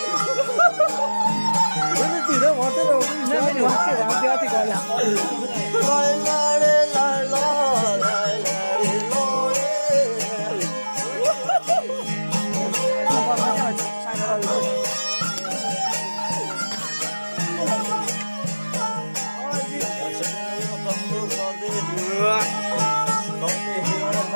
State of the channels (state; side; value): inverted; both; correlation -1.00